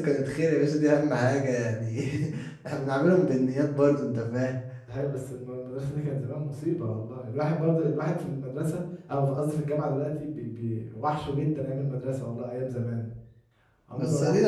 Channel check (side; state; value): both; identical; correlation 1.00